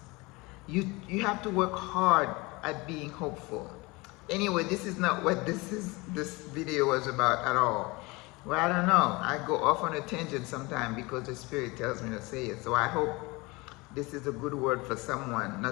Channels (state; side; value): quieter; right; 24.3 dB